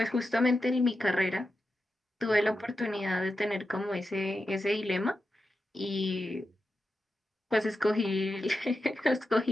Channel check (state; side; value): normal; both; correlation 0.89